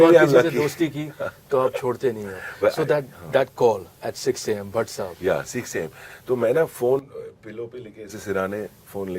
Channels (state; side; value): identical; both; correlation 1.00